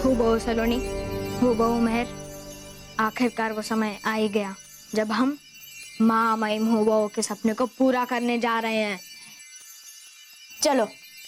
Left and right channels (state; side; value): identical; both; correlation 1.00